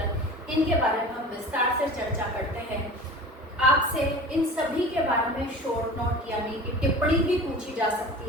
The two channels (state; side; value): normal; both; correlation 0.38